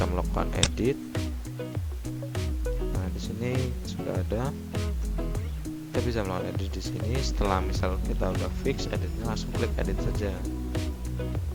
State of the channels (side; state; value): both; identical; correlation 1.00